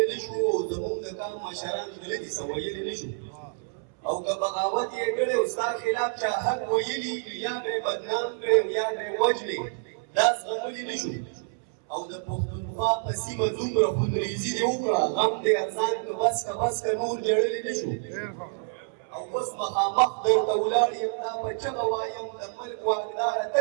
نه شو او زموږ د قام مشران غلطي څه ویلي نه شو او که بغاوت یې کړی او ستا خلاف چا حق ویلي یا به یې بدنام کړی او یا به یې وژنې دا زغملی نه شو او د پښتونخوا په سیمه دومره خونریزي دې وکړه غم دې ارزان که بس که نور جړلی نه شو او اوس مخامخ درته ولاړ یم دا په چغه وایم د ملک واکداره ته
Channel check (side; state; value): left; silent; 60 dB below the other